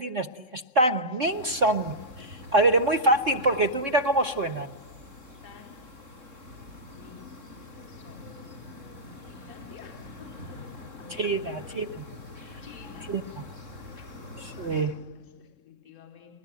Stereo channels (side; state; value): left; late; 3.7 ms